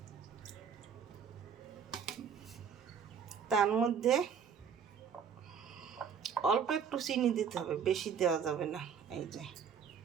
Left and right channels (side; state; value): left; quieter; 7.1 dB